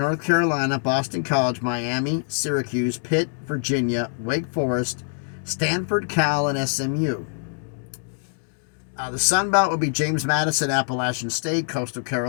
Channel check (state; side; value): silent; right; digital silence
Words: Carolina, Boston College, Miami, Syracuse, Pitt, Virginia, Wake Forest, Stanford, Cal, and SMU. The Sun Belt would be James Madison, Appalachian State, Coastal